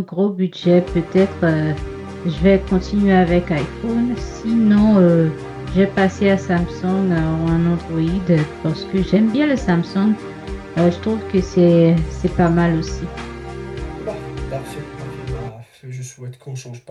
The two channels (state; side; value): identical; both; correlation 1.00